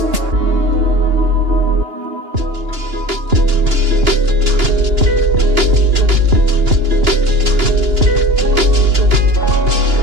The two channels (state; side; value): late; left; 2.9 ms